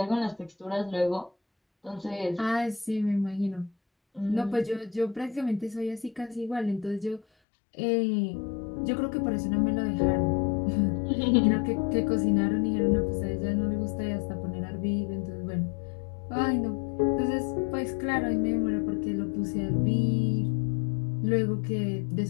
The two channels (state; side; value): drops out; right; at 7.2 s